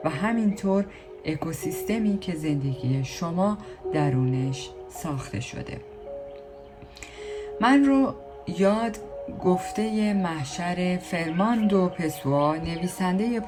و همینطور اکوسیستمی که زندگی شما درونش ساخته شده. من رو یاد گفته محشر فرماندو پسوا، نویسنده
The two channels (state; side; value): identical; both; correlation 1.00